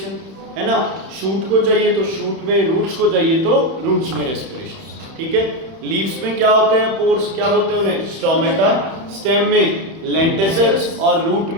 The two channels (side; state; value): left; late; 31 ms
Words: है ना। शूट को चाहिए तो शूट में, रूट्स को चाहिए तो रूट्स में रेस्पिरेशन, ठीक है। लीव्स में क्या होते हैं? पोर्स, क्या बोलते हैं उन्हें? स्टोमेटा। स्टेम में लेंटिसल्स और रूट